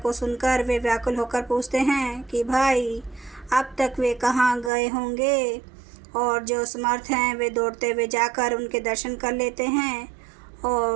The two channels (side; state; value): left; drops out; at 4.7 s